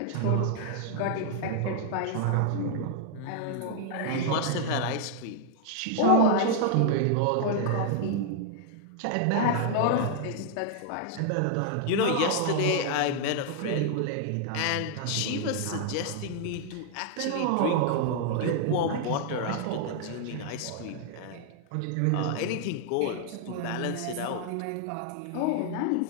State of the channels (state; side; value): different; both; correlation 0.00